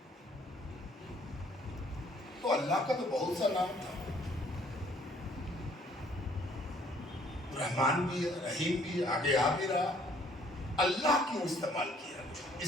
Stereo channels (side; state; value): both; normal; correlation 0.61